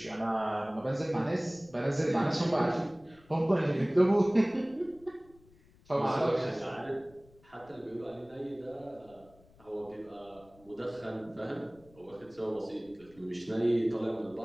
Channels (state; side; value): noise; left; rumble, 27 dB below the sound